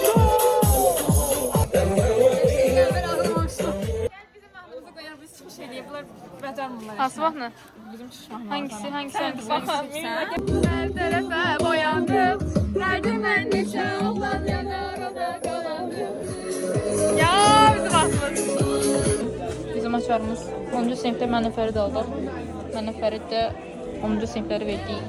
Bizim vaxtımızda qoyar biz çıxış eləyiblər. Bacarmırlar. Hansı vaxtını? Bizim çıxışmaq. Hangisi? Hangisi? Baxın. Hər tərəfə boyandım. Dərdim mən neçə oğlan yanar o da qalandım. Ya bizim vaxtımız. Bizim açarımız 10-cu sinifdə mənə Fərid aldı. Mənə Fərid də 10-cu sinifləri verdik.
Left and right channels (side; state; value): both; identical; correlation 1.00